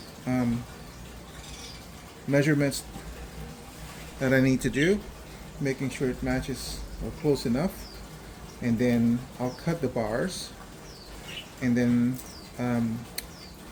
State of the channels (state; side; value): identical; both; correlation 1.00